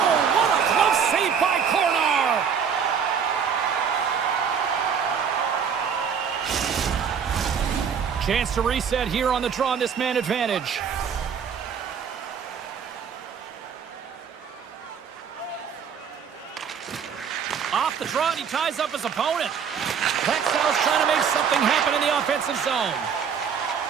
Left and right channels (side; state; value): left; quieter; 7.1 dB